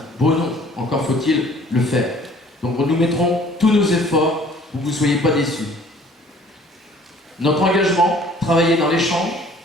beau nom, encore faut-il le faire. Donc nous mettrons tous nos efforts pour que vous ne soyez pas déçus. Notre engagement, travailler dans l'échange,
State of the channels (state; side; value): normal; both; correlation 0.54